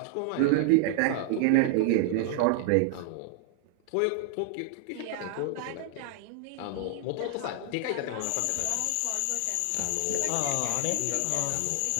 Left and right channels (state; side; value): different; both; correlation 0.00